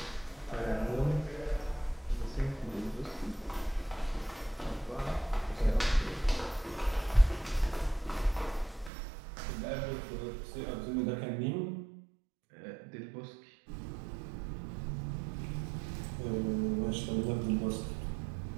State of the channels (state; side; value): drops out; left; at 8.9 s